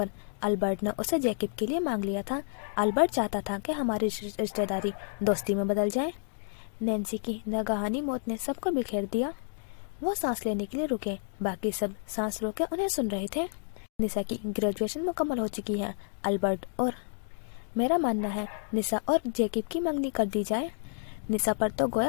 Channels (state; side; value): silent; right; 58 dB below the other